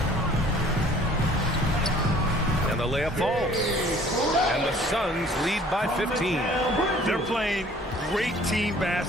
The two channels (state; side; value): normal; both; correlation 0.54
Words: And the layup falls. And the Suns lead by 15. They're playing great team